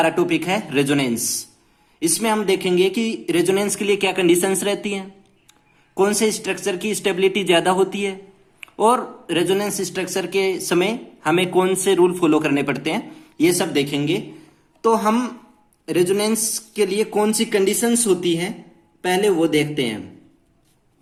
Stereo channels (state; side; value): identical; both; correlation 1.00